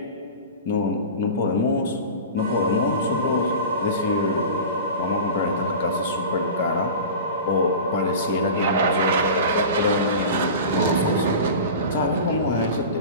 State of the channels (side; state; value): both; inverted; correlation -0.33